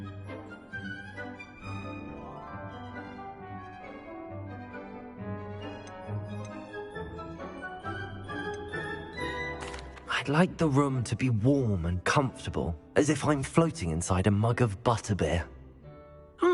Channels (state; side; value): identical; both; correlation 1.00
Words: I'd like the room to be warm and comfortable, as if I'm floating inside a mug of butterbeer.